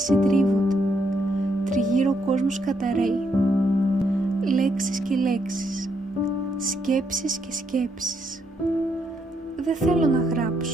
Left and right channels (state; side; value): normal; both; correlation 0.76